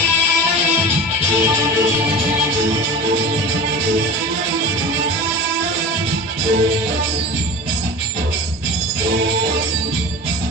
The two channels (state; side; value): normal; both; correlation 0.32